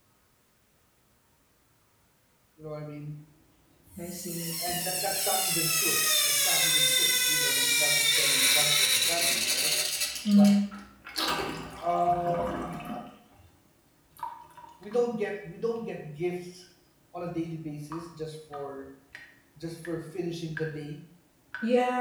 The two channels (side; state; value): both; identical; correlation 1.00